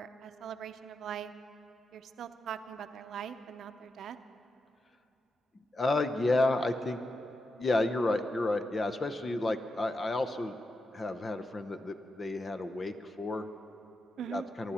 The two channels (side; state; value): both; normal; correlation 0.87